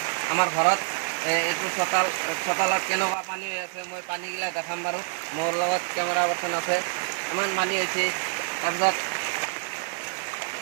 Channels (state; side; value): silent; left; digital silence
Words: আমাৰ ঘৰত। এইটো চোতালত কেনেকুৱা পানী হৈ আছে মই পানীগিলা দেখাম বাৰু। মোৰ লগত কেমেৰা পাৰ্চন আছে। ইমান পানী হৈছে। তাৰপিছত